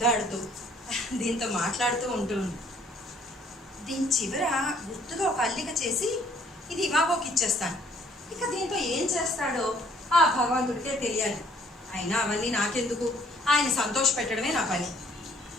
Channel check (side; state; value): both; normal; correlation 0.61